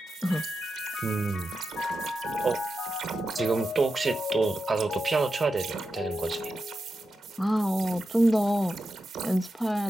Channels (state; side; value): normal; both; correlation 0.89